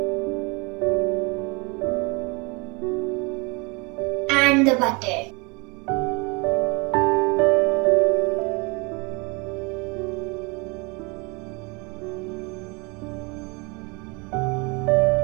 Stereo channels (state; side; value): quieter; left; 29.2 dB